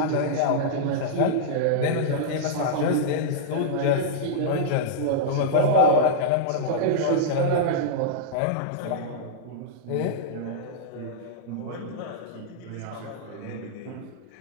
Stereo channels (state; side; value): different; both; correlation -0.03